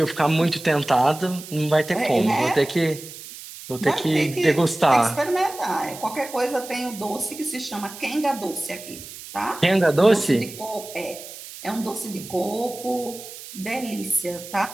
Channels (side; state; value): right; noise; hiss, 14 dB below the sound